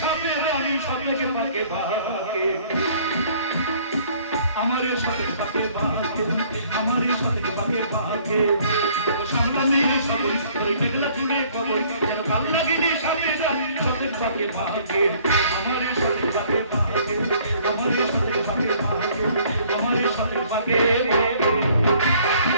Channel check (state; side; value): inverted; both; correlation -0.58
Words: সাপে রানী সাপেকে পাকে পাকে, আমারে সাপে পাকে পাকে, আমারে সাপে পাকে পাকে। সামনে সাগরী তোর মেঘলা চুলে কবরী, যেন কাল লাগেনি সাপে রানী সাপেকে পাকে পাকে, আমারে সাপে পাকে পাকে, আমারে সাপে পাকে পাকে, আমারে সাপে পাকে পাকে।